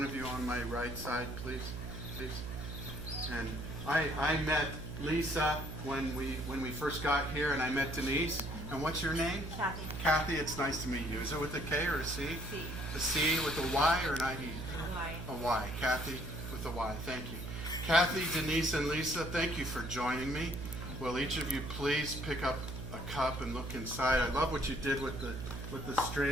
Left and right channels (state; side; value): noise; right; hum, 7 dB below the sound